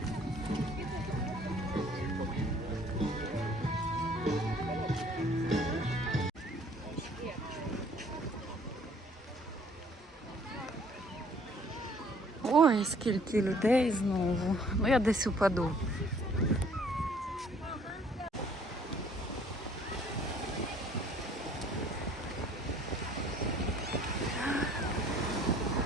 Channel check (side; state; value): both; normal; correlation 0.58